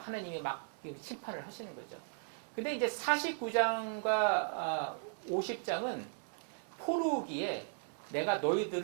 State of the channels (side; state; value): left; silent; 53 dB below the other